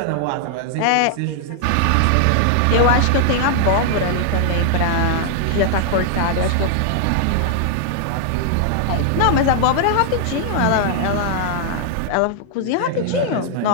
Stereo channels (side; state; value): both; different; correlation 0.00